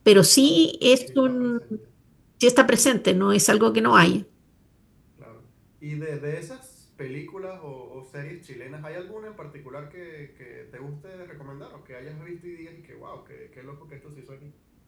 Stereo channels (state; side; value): identical; both; correlation 1.00